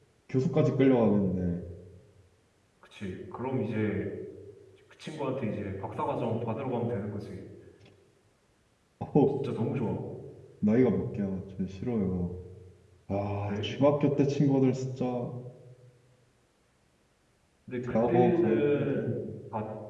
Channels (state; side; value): identical; both; correlation 1.00